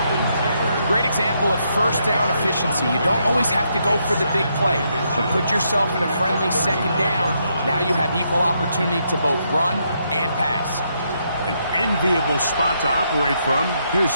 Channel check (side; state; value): both; inverted; correlation -0.77